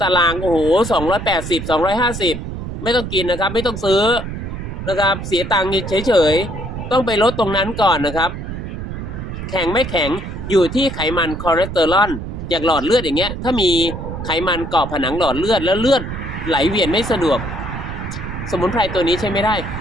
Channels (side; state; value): right; noise; rumble, 7 dB below the sound